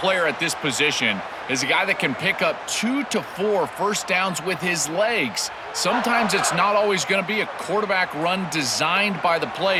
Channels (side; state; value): both; identical; correlation 1.00